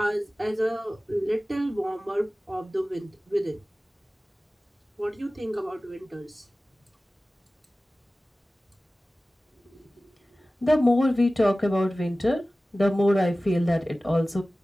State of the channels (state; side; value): normal; both; correlation 0.97